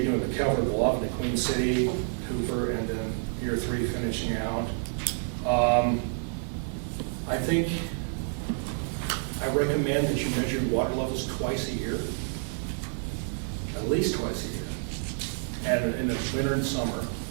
doing the Calvert Bluff, the Queen City, Hooper, and then year 3 finishing out. I think I recommend that you measure water levels twice a year, at least twice a year, and in the winter and summer.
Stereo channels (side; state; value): left; silent; 59 dB below the other